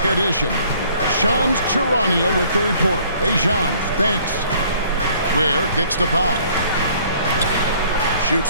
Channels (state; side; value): inverted; both; correlation -0.58